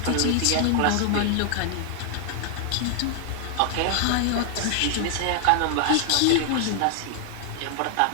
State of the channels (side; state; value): both; different; correlation 0.00